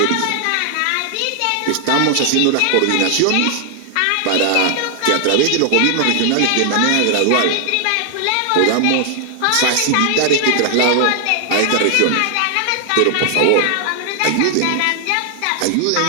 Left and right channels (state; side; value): different; both; correlation 0.00